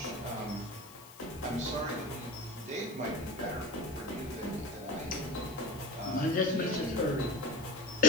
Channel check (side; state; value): left; noise; hiss, 18 dB below the sound